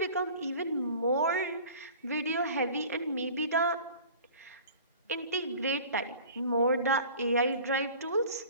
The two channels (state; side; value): inverted; both; correlation -0.44